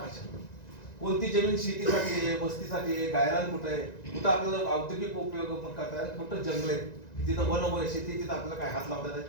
कोणती जमीन शेतीसाठी आहे, वस्तीसाठी आहे, गायरान कुठे आहे, कुठं आपल्याला औद्योगिक उपयोग करता येईल, कुठं जंगल आहेत, तिथं वन शेती, तिथं आपल्याला काय हात लावता येईल,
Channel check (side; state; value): right; late; 1.9 ms